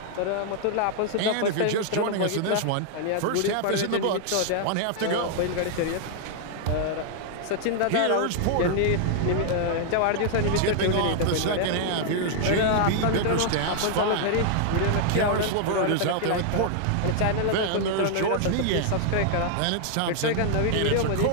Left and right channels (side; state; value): both; different; correlation -0.01